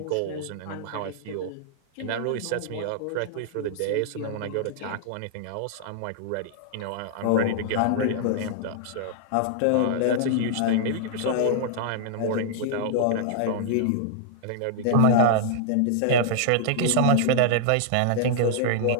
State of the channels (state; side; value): different; both; correlation -0.01